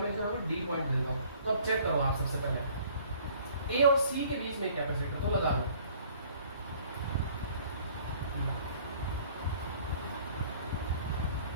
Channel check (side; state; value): both; inverted; correlation -0.55